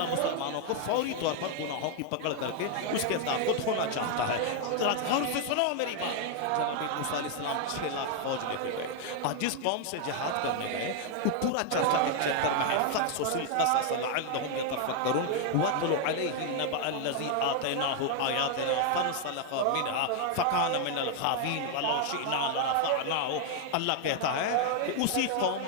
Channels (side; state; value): both; different; correlation 0.00